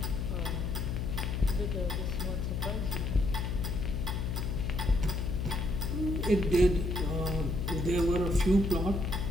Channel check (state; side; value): noise; left; hum, 1 dB below the sound